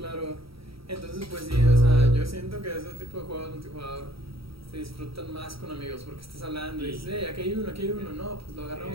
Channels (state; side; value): late; left; 0.75 ms